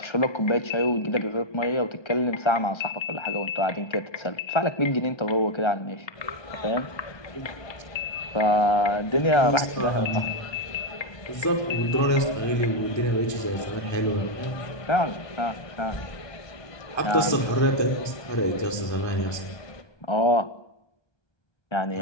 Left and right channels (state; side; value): late; right; 1.2 ms